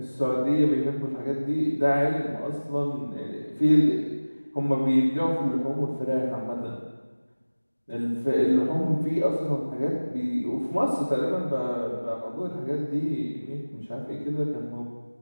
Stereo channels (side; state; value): both; inverted; correlation -1.00